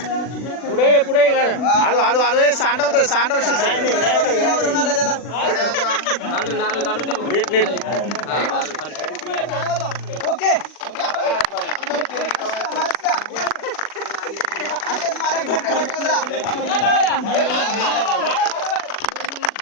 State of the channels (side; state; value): right; late; 40 ms